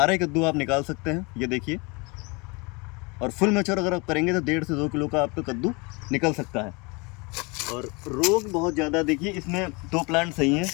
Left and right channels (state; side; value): quieter; right; 28.4 dB